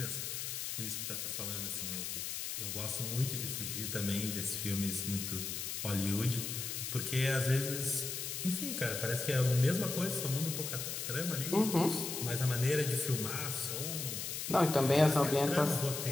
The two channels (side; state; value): left; noise; hiss, 4 dB below the sound